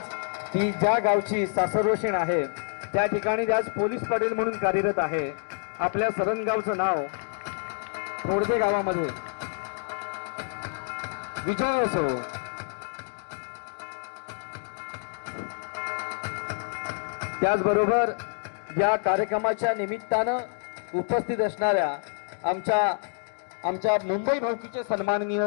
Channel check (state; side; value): silent; right; 60 dB below the other